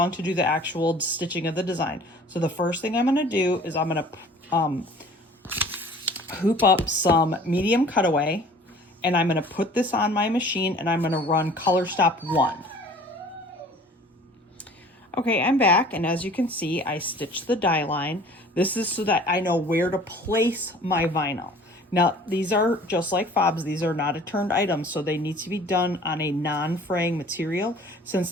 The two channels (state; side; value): normal; both; correlation 0.48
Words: to do the actual stitching of the design. So the first thing I'm going to do is I'm going to hoop up some medium cutaway, and I'm going to put this on my machine, and I'm going to run color stop 1. Okay, I'm back, and as you can see, I stitched the die line. This is so that I know where to place my vinyl. Now, these are just like fobs. These are not a turned item, so they need to be done on a non-fraying material. Since